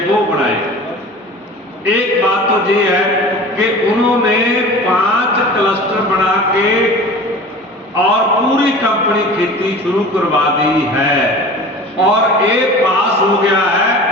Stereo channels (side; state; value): both; normal; correlation 0.39